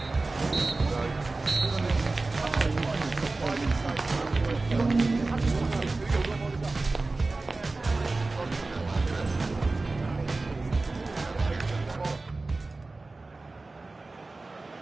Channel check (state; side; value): quieter; left; 3.4 dB